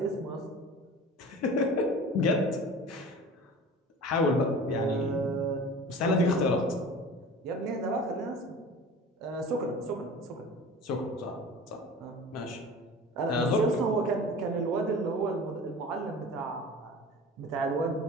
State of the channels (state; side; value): normal; both; correlation 0.39